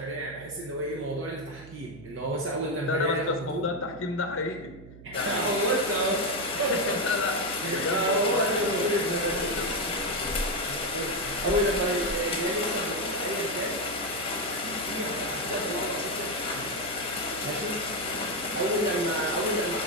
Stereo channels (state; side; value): noise; right; hum, 17 dB below the sound